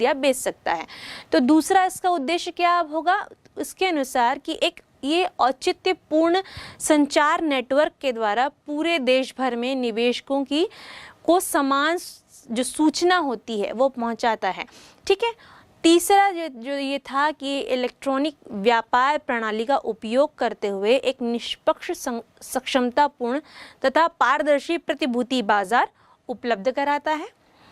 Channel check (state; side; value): identical; both; correlation 1.00